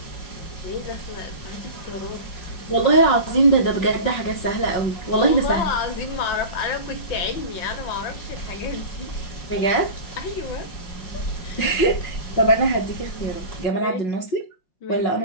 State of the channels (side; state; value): right; late; 5.4 ms